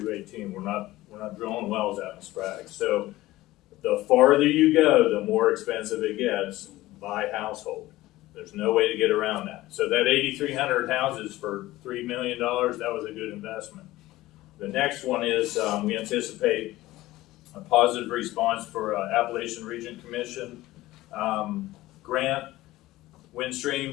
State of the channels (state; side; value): quieter; right; 17.3 dB